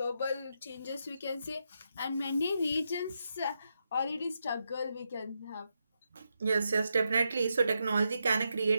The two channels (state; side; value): inverted; both; correlation -0.84